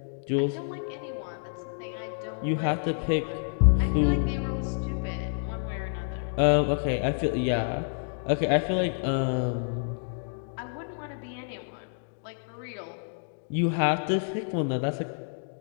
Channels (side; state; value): right; silent; digital silence